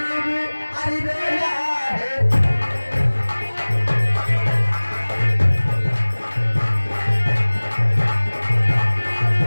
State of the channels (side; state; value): both; inverted; correlation -1.00